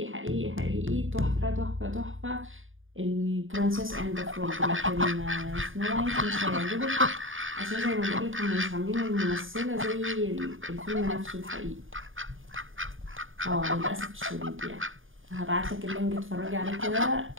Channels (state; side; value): late; left; 0.58 ms